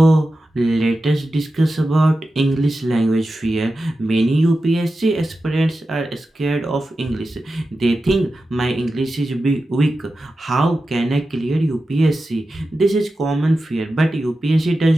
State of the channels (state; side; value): normal; both; correlation 0.92